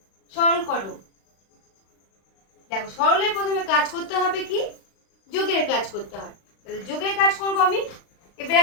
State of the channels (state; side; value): late; right; 36 ms